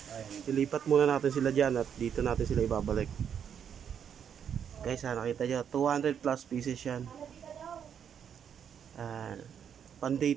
Ilipat muna natin sila dyan at dito natin sila ibabalik. Guys, nakita nyo, 200 plus pieces yan. Yan, pan day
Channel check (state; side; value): quieter; left; 8.2 dB